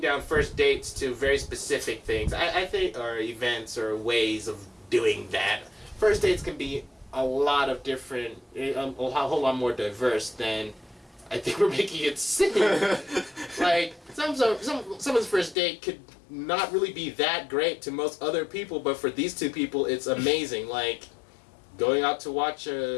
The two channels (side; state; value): right; drops out; at 15.6 s